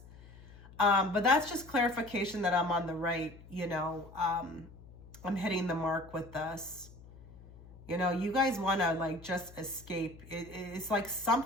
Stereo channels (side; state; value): left; noise; hum, 20 dB below the sound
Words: But that's just clarification that I'm on the right, you know, I'm hitting the mark with this. You know, you guys want to like just escape. It's like